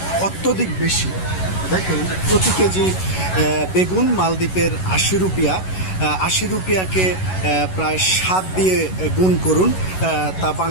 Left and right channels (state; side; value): late; right; 11 ms